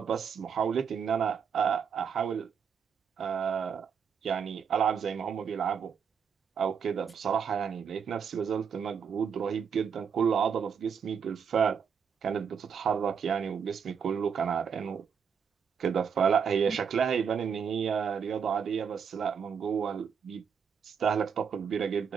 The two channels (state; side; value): quieter; left; 6.9 dB